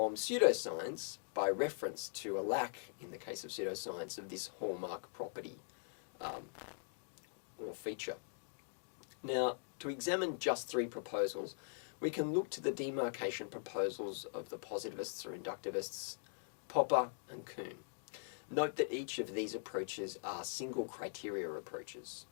pseudoscience by reference to a lack, in the case of pseudoscience, of this hallmark property or feature. Now, to examine just 3 proposals, we can look to the demarcation proposals of the positivists or inductivists, Popper and Kuhn. Note that each of these approaches are single criteria approaches.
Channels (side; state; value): right; silent; digital silence